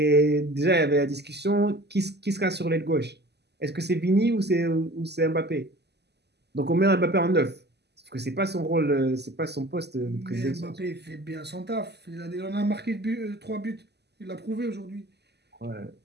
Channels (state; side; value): late; left; 0.49 ms